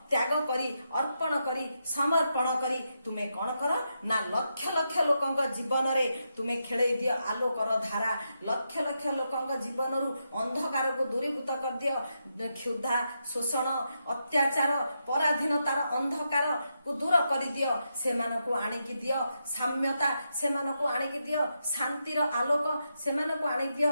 त्याग करी अर्पण करी समर्पण करी तुमे कौन कर ना लक्ष लक्ष लोकंग जीवन रे तुमे खेले दियो आलोकर धारा लक्ष लक्ष लोकंग जीवन रु अंधकार को दूरीभूत कर दियो क्षुधा शोषण अत्याचार पराधीनतार अंधकार को दूर कर दियो से मानको आनिकी दियो साम्यता से मानको आनिकी दियो शांतिर आलोक से मानको आनिकी दियो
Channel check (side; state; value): both; inverted; correlation -0.84